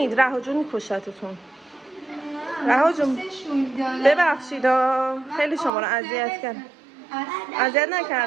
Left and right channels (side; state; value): left; drops out; at 5.7 s